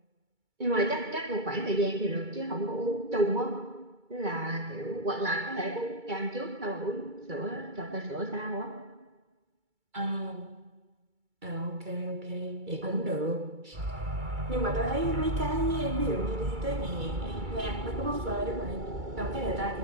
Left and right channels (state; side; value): late; left; 2.3 ms